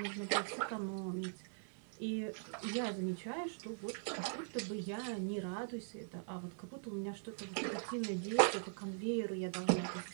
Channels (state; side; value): silent; left; digital silence